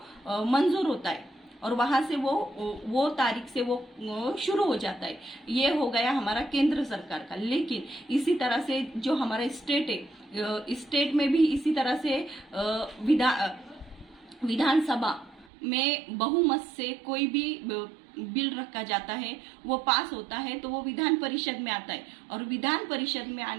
मंजूर होता है, और वहां से वो तारीख से वो शुरू हो जाता है। ये हो गया हमारा केंद्र सरकार का। लेकिन इसी तरह से जो हमारा स्टेट है, स्टेट में भी इसी तरह से विधानसभा में बहुमत से कोई भी बिल रखा जाता है, वो पास होता है तो वो विधान परिषद में आता है, और विधान परिषद में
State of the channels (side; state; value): left; drops out; at 15.5 s